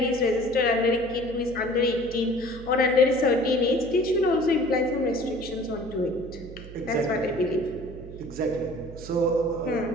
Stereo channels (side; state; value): right; noise; hum, 15 dB below the sound